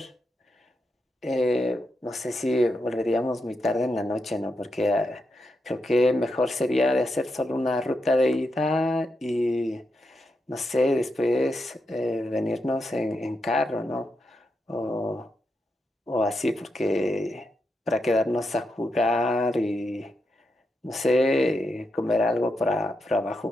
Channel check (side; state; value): both; normal; correlation 0.84